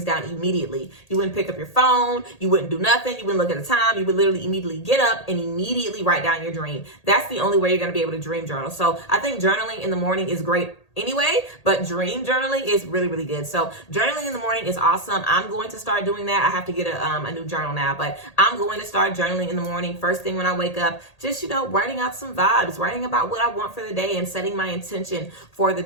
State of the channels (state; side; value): late; right; 1.8 ms